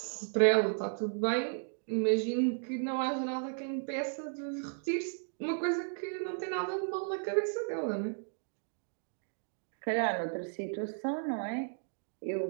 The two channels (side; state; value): left; silent; digital silence